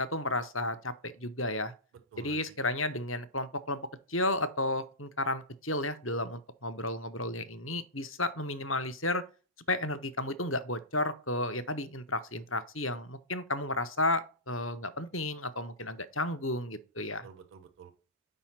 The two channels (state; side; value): normal; both; correlation -0.18